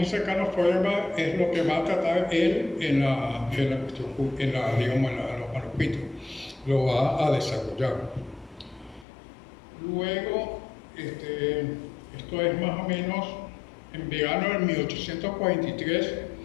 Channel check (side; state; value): right; drops out; at 9.1 s